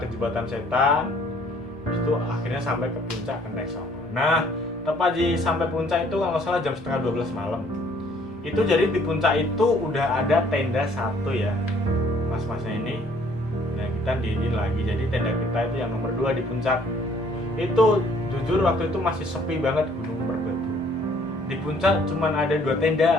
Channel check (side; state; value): both; normal; correlation 0.60